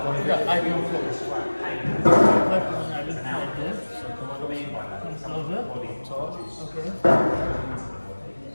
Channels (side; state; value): both; inverted; correlation -1.00